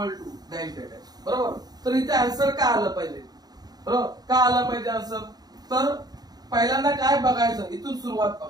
डॅश डॅश, बरोबर. तर इथे आन्सर का आलं पाहिजे, बरोबर, का आलं पाहिजे आन्सर. तर पहिल्यांदा काय बघायचं, इथून सुरुवात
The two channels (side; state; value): left; late; 0.19 ms